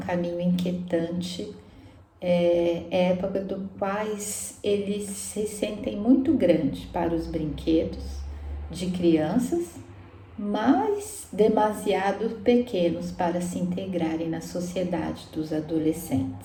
inquietante, é época do quais eles se sentem muito grande para os brinquedos de crianças, mas demasiado pequenos para se integrarem na sociedade dos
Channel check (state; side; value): identical; both; correlation 1.00